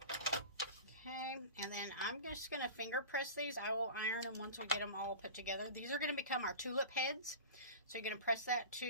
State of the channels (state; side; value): inverted; both; correlation -0.33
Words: Okay, and then I'm just going to finger press these. I will iron them once we get them all put together. These are going to become our tulip heads. So you're going to press that